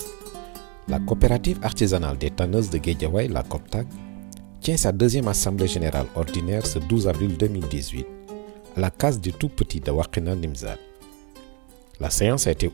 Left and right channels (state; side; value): quieter; left; 31.4 dB